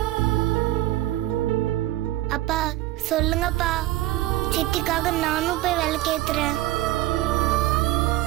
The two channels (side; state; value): left; quieter; 16.0 dB